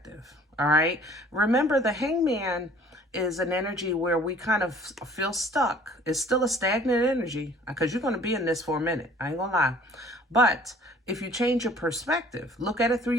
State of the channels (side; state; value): both; normal; correlation 0.53